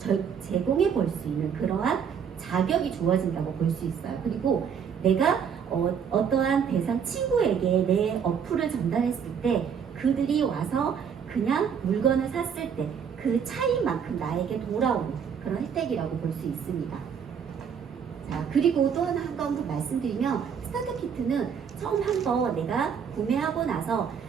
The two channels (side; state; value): left; quieter; 7.3 dB